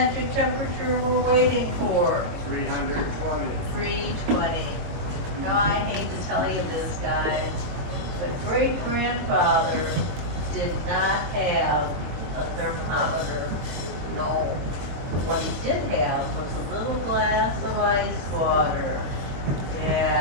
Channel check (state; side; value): late; left; 22 ms